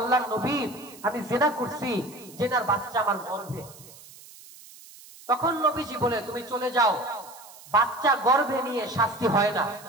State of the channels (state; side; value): noise; right; hiss, 20 dB below the sound